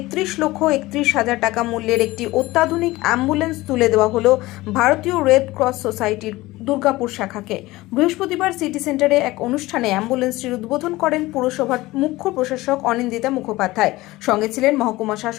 টাকা মূল্যের একটি অত্যাধুনিক অ্যাম্বুলেন্স তুলে দেওয়া হলো ভারতীয় রেড ক্রস সোসাইটির দুর্গাপুর শাখাকে। বৃহস্পতিবার সিটি সেন্টারে এক অনুষ্ঠানে অ্যাম্বুলেন্সটির উদ্বোধন করেন পুরসভার মুখ্য প্রশাসক অনিন্দিতা মুখোপাধ্যায়। সঙ্গে ছিলেন মহকুমা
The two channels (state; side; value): quieter; right; 19.1 dB